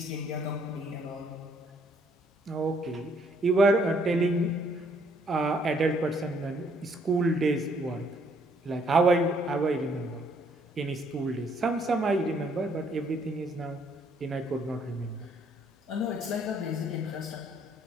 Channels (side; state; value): both; normal; correlation 0.67